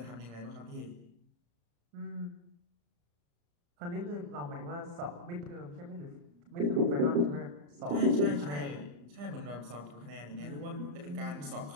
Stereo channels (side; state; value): left; late; 34 ms